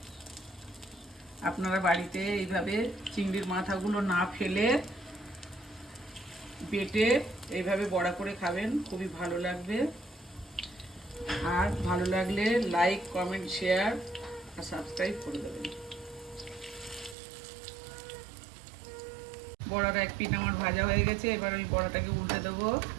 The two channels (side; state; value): left; drops out; at 17.2 s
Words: আপনারা বাড়িতে এইভাবে চিংড়ির মাথাগুলো না ফেলে বেটে এইভাবে বড়া করে খাবেন, খুবই ভালো লাগবে। আর ভালো লাগলে লাইক, কমেন্ট, শেয়ার আর সাবস্ক্রাইব করে দেবেন। বড়াটা এক পিঠ আমার ভাজা হয়ে গেছে। এবার আমি বড়াটাকে উল্টে দেবো।